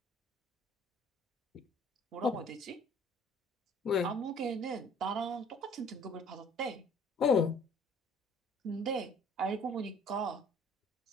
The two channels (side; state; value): both; normal; correlation 0.54